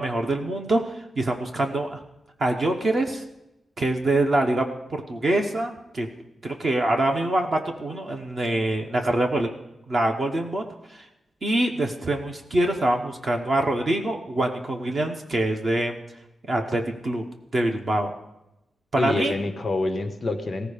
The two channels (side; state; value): both; normal; correlation 0.88